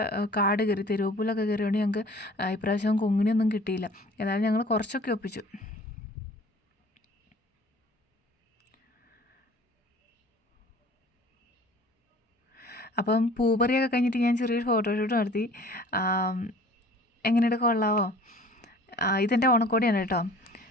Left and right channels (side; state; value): both; normal; correlation 0.48